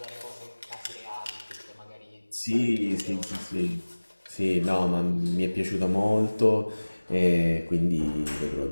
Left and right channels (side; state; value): both; inverted; correlation -1.00